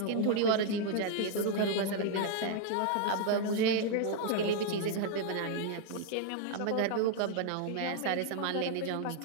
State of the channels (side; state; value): both; different; correlation 0.00